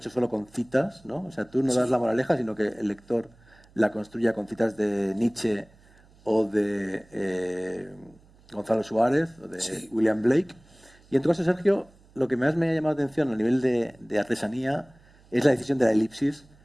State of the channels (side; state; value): right; noise; hum, 28 dB below the sound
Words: solo con citas, ¿no? O sea, tú no das la moraleja, sino que el lector la construya con citas de Nietzsche o de Gonzalo Suárez o de William Blake. Y en tu caso, Sergio, lo que más me ha llamado la atención a nivel de artesanía es la decisión de la elipsis